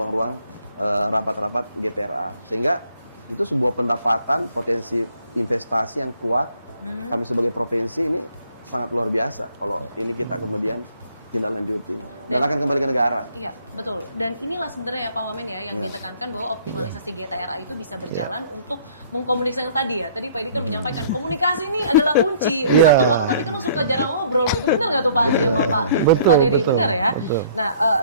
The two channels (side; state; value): both; inverted; correlation -0.58